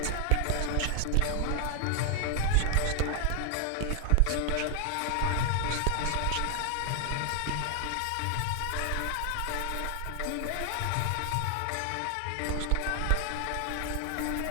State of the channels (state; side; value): different; both; correlation 0.00